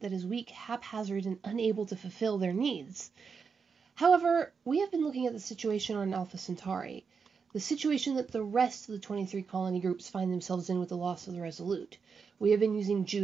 that is weak, haphazard, and unable to fulfill their needs? However, we have been looking at the situation on Alpha Centauri, the situation that the rest of the 23 colony groups find themselves in with the loss of the Resolute. We have been using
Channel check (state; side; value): quieter; left; 5.7 dB